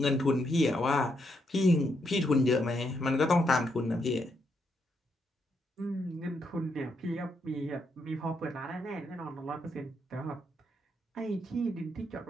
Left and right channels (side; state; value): both; normal; correlation 0.78